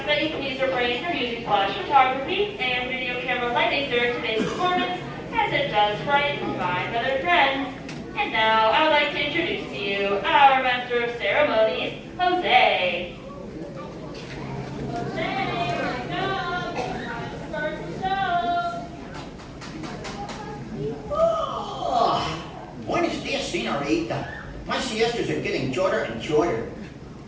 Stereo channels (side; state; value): both; identical; correlation 1.00